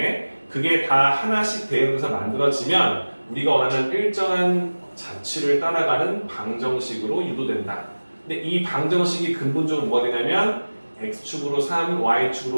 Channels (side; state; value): both; inverted; correlation -1.00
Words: 그게 다 하나씩 대응돼서 만들어지면 우리가 원하는 일정한 자취를 따라가는 방정식으로 유도된다. 근데 이 방정식이 근본적으로 뭐가 되냐면 x축으로 3,